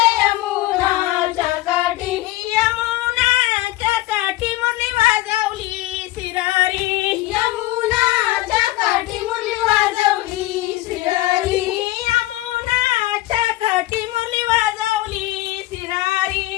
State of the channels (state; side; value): quieter; right; 17.5 dB